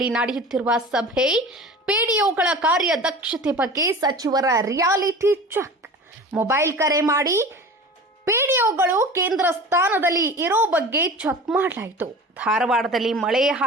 ನಡೆಯುತ್ತಿರುವ ಸಭೆ, ಪಿಡಿಒಗಳ ಕಾರ್ಯದಕ್ಷತೆ ಬಗ್ಗೆ ಸಚಿವರ ರಿಯಾಲಿಟಿ ಚೆಕ್. ಮೊಬೈಲ್ ಕರೆ ಮಾಡಿ ಪಿಡಿಒಗಳು ಕೇಂದ್ರ ಸ್ಥಾನದಲ್ಲಿ ಇರೋ ಬಗ್ಗೆ ಚೆಕ್ ಮಾಡಲಾಯಿತು. ಧಾರವಾಡದಲ್ಲಿ ಮಳೆ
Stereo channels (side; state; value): both; normal; correlation 0.37